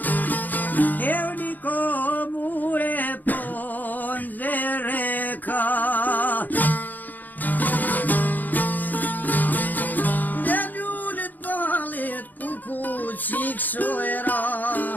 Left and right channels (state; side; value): late; right; 0.084 ms